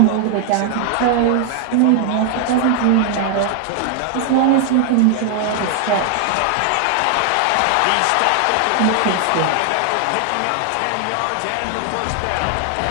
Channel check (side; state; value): both; different; correlation 0.00